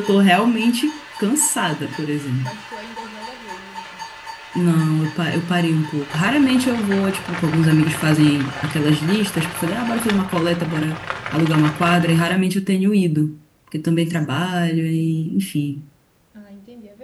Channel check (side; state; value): both; identical; correlation 1.00